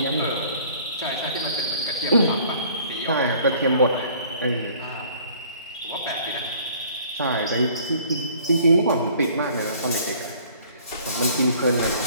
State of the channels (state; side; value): inverted; both; correlation -0.55